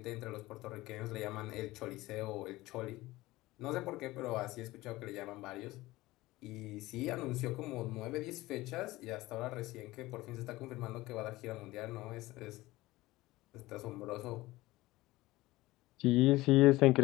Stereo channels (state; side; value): quieter; right; 18.8 dB